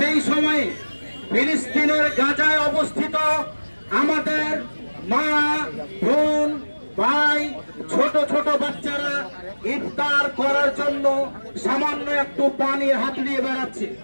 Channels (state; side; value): inverted; both; correlation -1.00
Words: সময়ে ফিলিস্তিনের গাজায় অবস্থিত আমাদের মা, বোন, ভাই, ছোট ছোট বাচ্চারা ইফতার করার জন্য সামান্য একটু পানি হাত দিয়ে বেড়াচ্ছে।